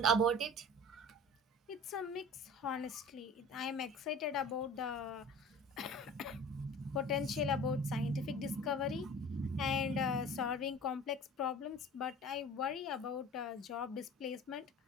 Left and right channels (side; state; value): both; normal; correlation 0.40